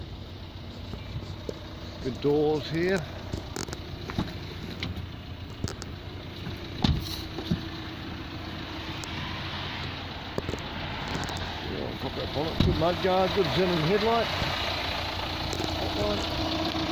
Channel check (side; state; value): both; identical; correlation 1.00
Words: Good doors here. Yeah, pop that bonnet. Good mudguard, good xenon headlight.